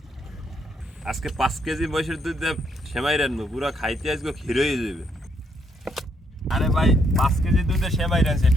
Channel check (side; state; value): both; normal; correlation 0.72